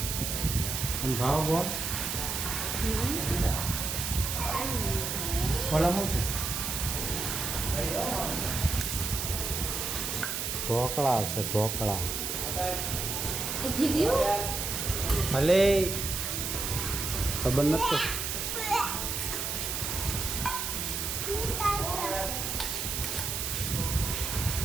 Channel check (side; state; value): right; noise; hiss, 2 dB below the sound